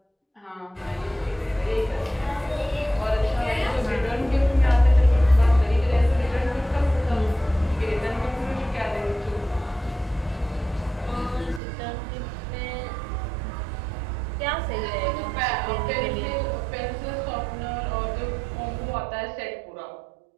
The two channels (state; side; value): drops out; left; at 11.6 s